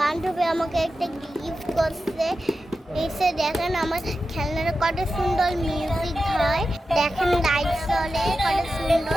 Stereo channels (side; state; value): both; normal; correlation 0.91